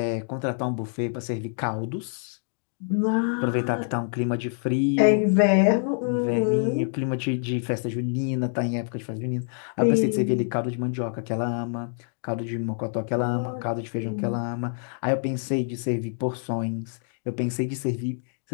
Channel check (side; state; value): right; silent; digital silence